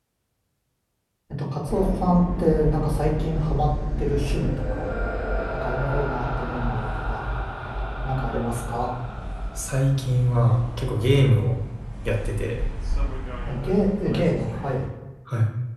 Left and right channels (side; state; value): both; identical; correlation 1.00